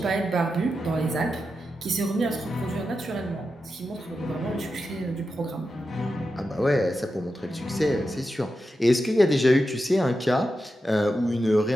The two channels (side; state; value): both; normal; correlation 0.89